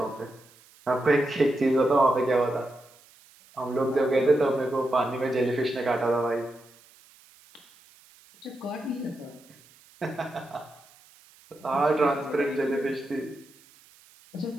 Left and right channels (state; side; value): noise; right; hiss, 27 dB below the sound